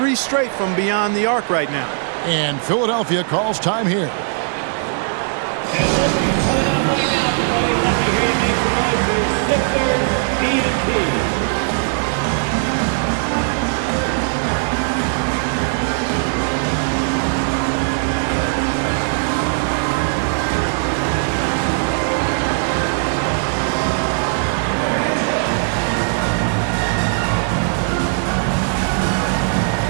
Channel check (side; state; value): left; silent; digital silence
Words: straight from beyond the arc right now. And Philadelphia calls time here.